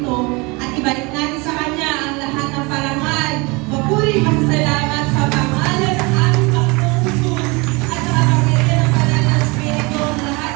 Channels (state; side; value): quieter; left; 26.9 dB